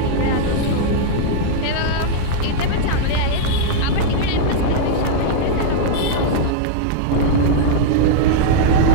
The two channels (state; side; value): different; both; correlation -0.01